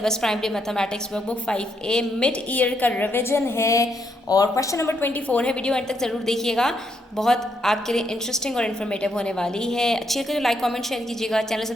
Primary Mathematics Workbook 5A. Mid year का रिवीजन है और क्वेश्चन नंबर 24 है. वीडियो एंड तक ज़रूर देखिएगा, बहुत आपके लिए इंटरेस्टिंग और इन्फॉर्मेटिव होने वाली है. अच्छी लगे तो लाइक कमेंट शेयर कीजिएगा. चैनल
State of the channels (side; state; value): both; normal; correlation 0.76